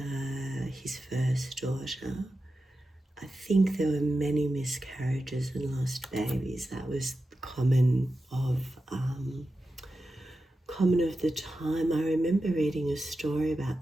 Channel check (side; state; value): both; normal; correlation 0.91